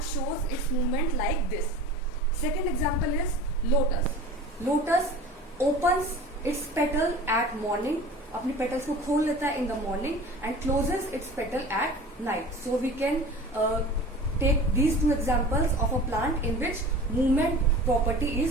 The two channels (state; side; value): normal; both; correlation 0.38